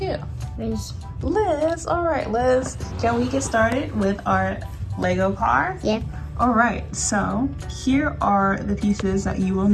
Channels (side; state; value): both; identical; correlation 1.00